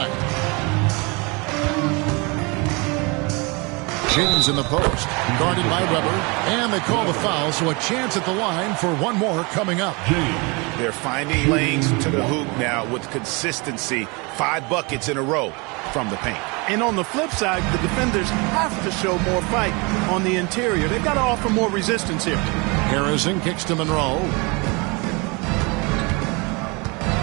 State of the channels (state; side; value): quieter; left; 28.6 dB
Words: James in the post, guarded by Weber, and they call the foul, so a chance at the line for one more coming up. They're finding lanes to the hoop now with consistency. 5 buckets in a row from the paint. And on the flip side, the defenders have to show more fight on the interior. They've got to offer more resistance here. Harrison kicks to Monroe.